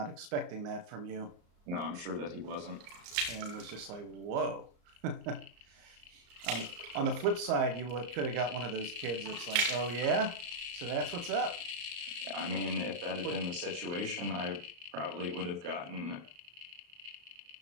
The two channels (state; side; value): late; left; 34 ms